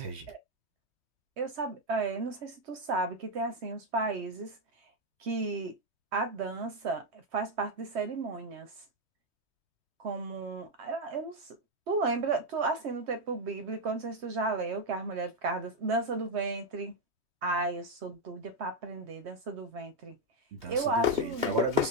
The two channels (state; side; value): late; left; 3.2 ms